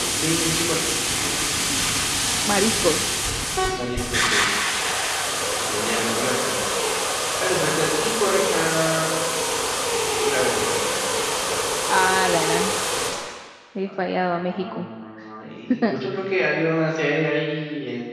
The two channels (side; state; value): both; identical; correlation 1.00